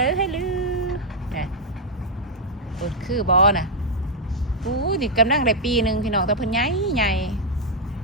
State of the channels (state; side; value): normal; both; correlation -0.01